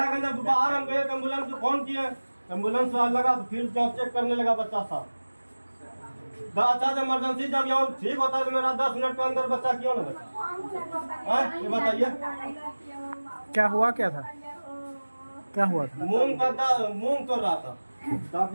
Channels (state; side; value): inverted; both; correlation -1.00